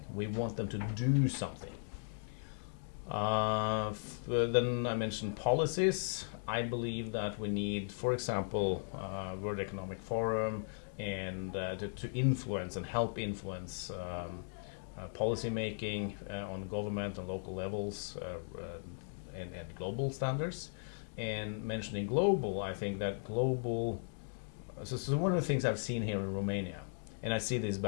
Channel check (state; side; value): silent; right; digital silence